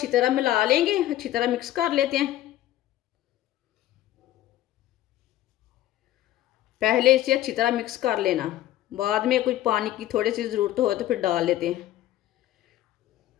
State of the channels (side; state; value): right; quieter; 13.8 dB